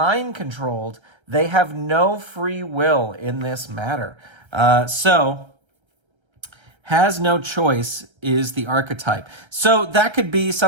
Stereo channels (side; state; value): left; late; 1.3 ms